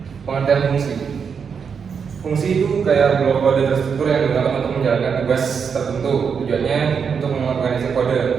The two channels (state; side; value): quieter; left; 6.4 dB